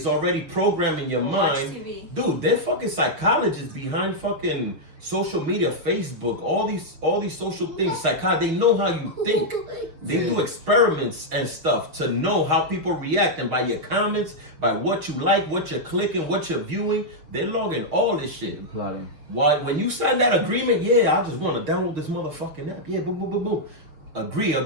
already programming your mind. Dude, they're fucking psychologists behind fucking social media, Facebook, all these social things. They know how you think. They do experiments and stuff to know how people react, and by your comments, by what you like, what you're clicking, what you're viewing, they're logging all this shit. Plotting. Why when you sign that agreement, yeah, I just want to download this motherfucking app. Yeah, boom, boom, boom, boom.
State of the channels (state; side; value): late; left; 6.7 ms